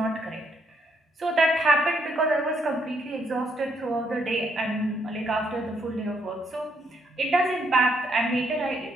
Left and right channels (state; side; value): normal; both; correlation 0.73